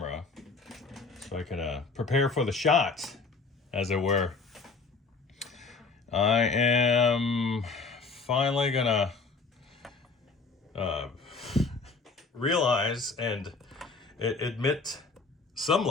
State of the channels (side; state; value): right; quieter; 4.3 dB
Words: so I can prepare for the shot, as it were. I am finally gonna realize and admit some